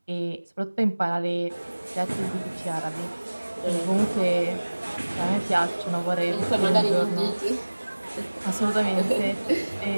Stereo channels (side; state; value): both; inverted; correlation -1.00